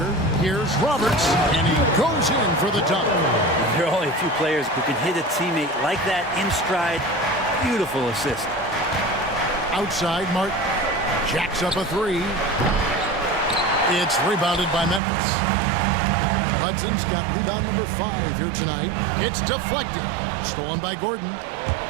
Here's Roberts, and he goes in for the dunk. There are only a few players who can hit a teammate like that in stride. Beautiful assist. Outside, Martin jacks up a 3. It's rebounded by Memphis. Hudson's got rebound number 5 here tonight. It's deflected. Stolen by Gordon.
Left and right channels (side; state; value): left; drops out; at 15.0 s